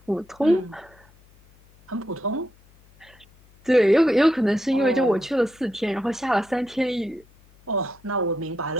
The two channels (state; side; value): noise; left; hum, 29 dB below the sound